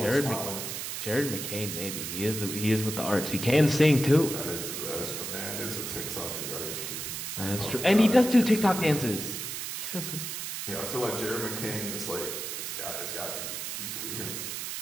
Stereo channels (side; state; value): right; noise; hiss, 5 dB below the sound